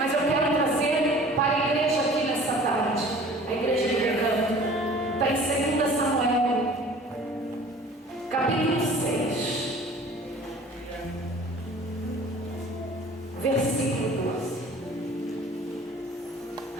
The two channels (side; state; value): both; normal; correlation 0.47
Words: eu quero trazer para a igreja aqui nessa tarde, a igreja de Recanto. Está em 2 Samuel, capítulo 6, versículo 12.